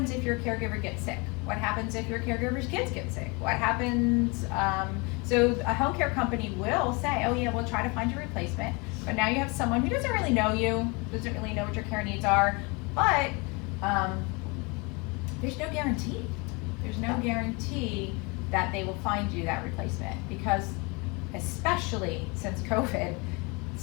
if your caregiver gets sick? What happens if your caregiver's kids get sick? What happens, so a home care company will say, oh yeah, we'll try to find your replacement, but now you have someone who doesn't really know you, doesn't really know what your care needs are, but there's no guarantee. There's no guarantee that they will find you that replacement, because especially since COVID,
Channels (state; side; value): quieter; right; 28.8 dB